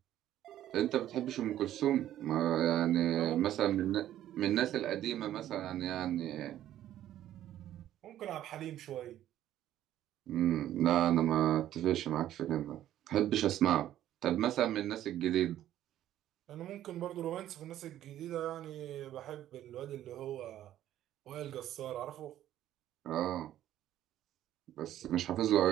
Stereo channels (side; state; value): left; quieter; 12.4 dB